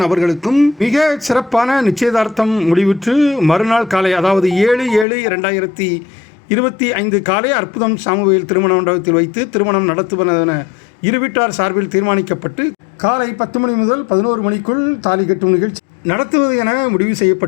அவர்களுக்கும் மிக சிறப்பான நிச்சயதார்த்தம் முடிவுற்று மறுநாள் காலை, அதாவது 7/7/2025 காலை அற்புதம் சாமுவேல் திருமண மண்டபத்தில் வைத்து திருமணம் நடத்துவதென இரு வீட்டார் சார்பில் தீர்மானிக்கப்பட்டு காலை 10 மணி முதல் 11 மணிக்குள் தாலி கட்டும் நிகழ்ச்சி நடத்துவது என முடிவு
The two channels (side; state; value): right; drops out; at 5.1 s